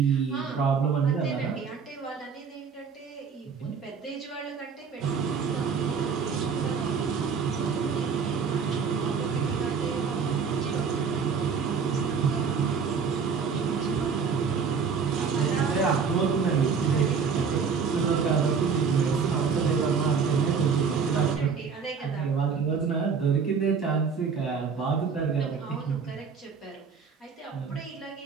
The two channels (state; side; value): quieter; left; 5.9 dB